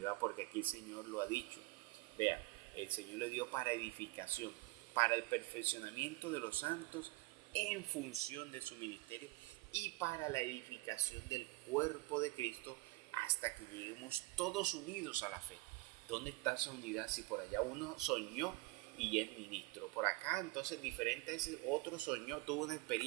porque aquí el Señor lo ha dicho. Vea, el Señor le dio para edificación, para el perfeccionamiento de los santos en función de su ministerio y para la edificación del cuerpo de Cristo hasta que lleguemos todos unidos a la fe. ¿Dónde está esa unidad? Si por allá uno soñó y es ministro, por acá entonces diferente a ese otro soñó, tuvo una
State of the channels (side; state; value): left; quieter; 23.0 dB